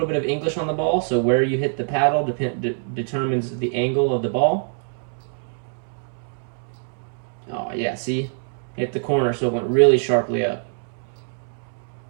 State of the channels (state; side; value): silent; left; 63 dB below the other